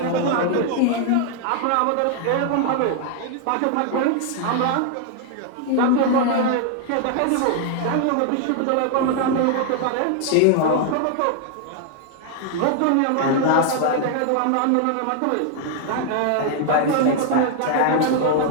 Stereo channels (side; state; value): both; different; correlation 0.00